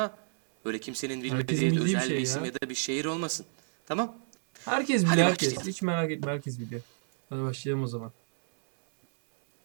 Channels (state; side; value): silent; left; 58 dB below the other